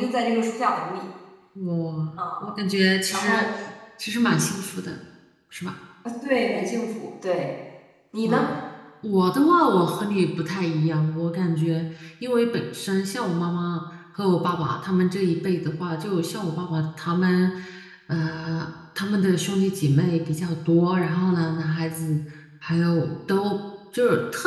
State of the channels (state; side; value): identical; both; correlation 1.00